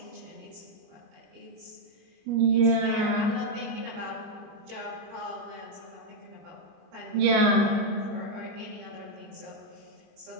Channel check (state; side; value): late; left; 25 ms